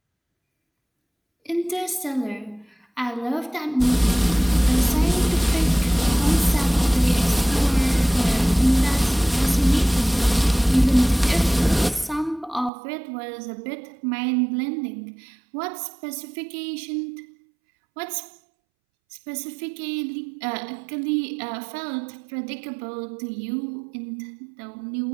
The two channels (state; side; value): drops out; left; at 12.7 s